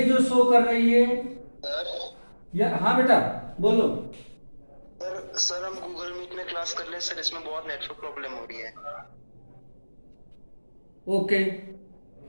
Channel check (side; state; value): both; inverted; correlation -1.00